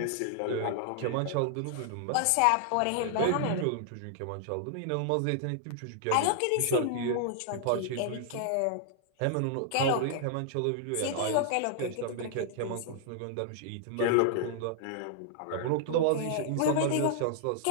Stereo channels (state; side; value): different; both; correlation -0.01